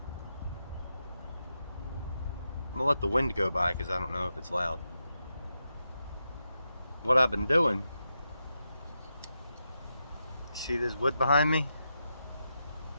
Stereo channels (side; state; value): both; inverted; correlation -0.87